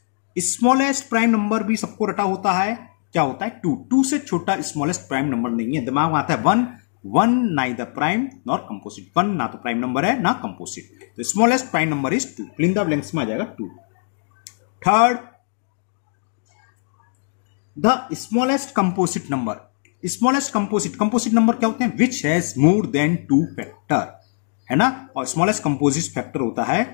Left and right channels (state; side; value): silent; right; digital silence